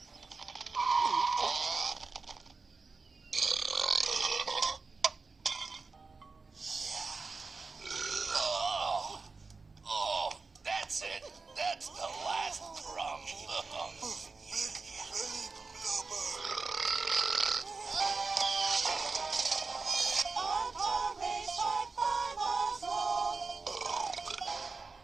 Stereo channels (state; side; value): quieter; left; 4.2 dB